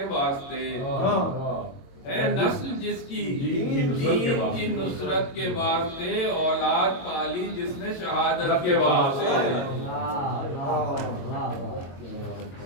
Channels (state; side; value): late; right; 22 ms